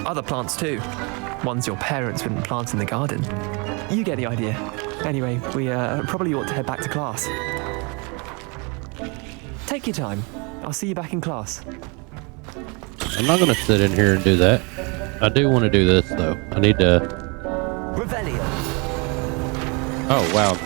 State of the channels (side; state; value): left; quieter; 31.1 dB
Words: Other plants too. Ones your parents wouldn't plant in the garden. You get the idea. Anyway, we probably ought to head back to class. Take your time. I'll see you back in class. I'm not gonna sit in here and do that. I do want to do this though. I need to. Revelio. Oh wow, I'm